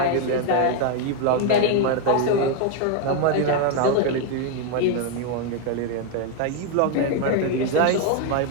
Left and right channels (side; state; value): both; different; correlation 0.01